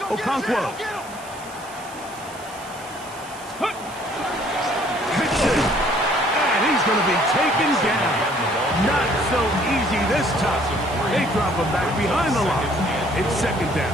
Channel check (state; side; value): noise; right; hiss, 19 dB below the sound